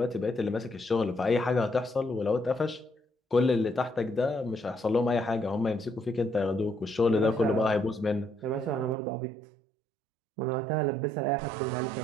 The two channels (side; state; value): left; drops out; at 9.0 s